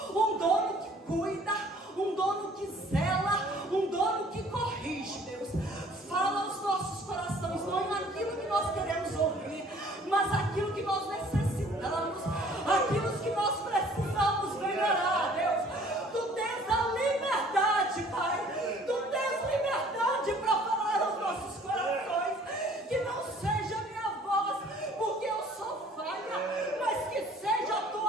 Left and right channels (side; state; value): both; normal; correlation 0.55